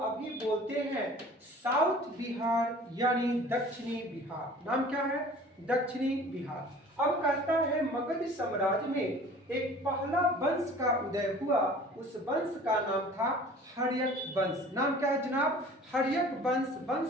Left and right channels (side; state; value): both; normal; correlation 0.46